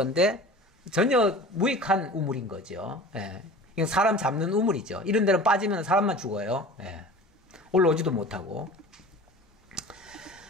전혀 무익한 우물인 거죠. 이건 사람 잡는 우물이죠. 이런 데는 빠지면 사람만 죽어요. 올라오지도 못하고.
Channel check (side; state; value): both; normal; correlation 0.39